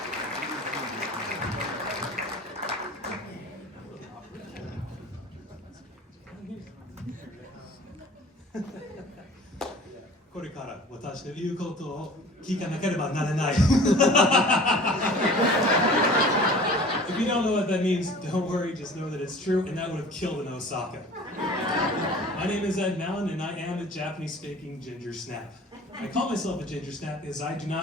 これから私の言うことを聞かなければならない。If you don't know what that means, don't worry, just know that it's true, and that would have killed in Osaka. My name is Ed Malin, and I am a Japanese-speaking ginger snap. I call myself a ginger snap because I do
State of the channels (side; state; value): both; normal; correlation 0.44